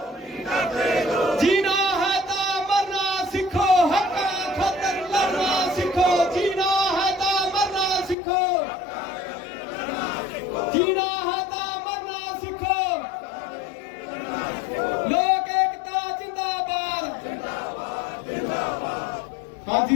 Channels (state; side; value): drops out; right; at 8.2 s